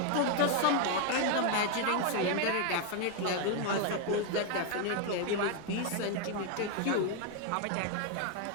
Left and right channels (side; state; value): both; different; correlation 0.01